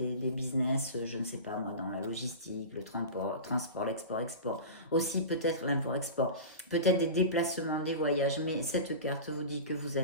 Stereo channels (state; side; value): inverted; both; correlation -0.31